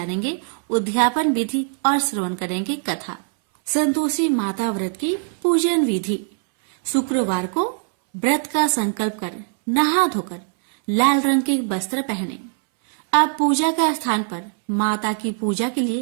उद्यापन विधि और श्रवण करेंगे कथा। संतोषी माता व्रत की पूजन विधि। शुक्रवार को व्रत का संकल्प कर नहा धोकर लाल रंग के वस्त्र पहने। अब पूजा के स्थान पर माता की पूजा के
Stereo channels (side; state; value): left; silent; 65 dB below the other